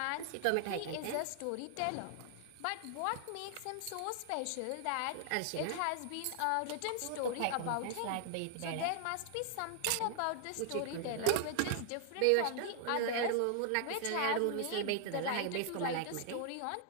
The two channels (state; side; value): different; both; correlation 0.00